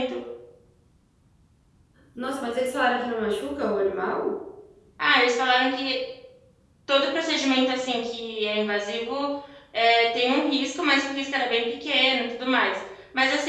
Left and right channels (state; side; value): identical; both; correlation 1.00